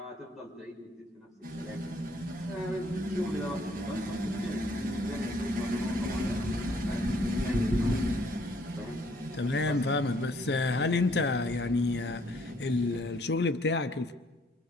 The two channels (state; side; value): normal; both; correlation 0.64